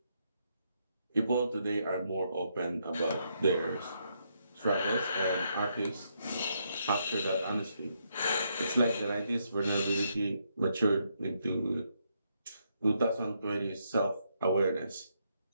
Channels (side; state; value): both; inverted; correlation -0.77